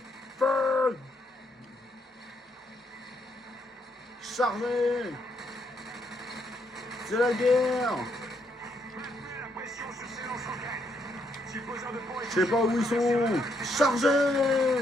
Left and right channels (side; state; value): both; normal; correlation 0.75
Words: Feu! Chargez! C'est la guerre! Maintenez la pression sur ces lance-roquettes. Si le besoin de pont est Je sais pas où ils sont! Chargez!